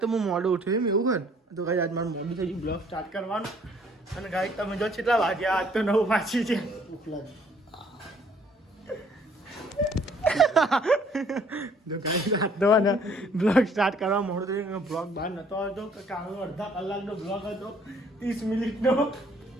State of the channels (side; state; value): both; normal; correlation 0.61